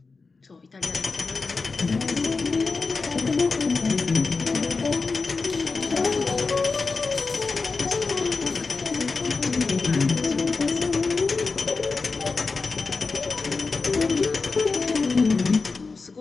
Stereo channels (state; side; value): quieter; right; 4.2 dB